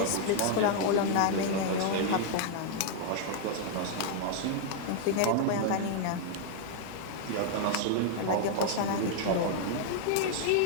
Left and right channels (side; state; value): both; different; correlation -0.01